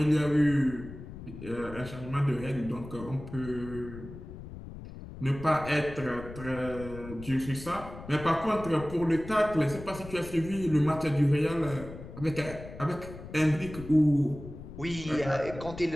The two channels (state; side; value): noise; left; rumble, 13 dB below the sound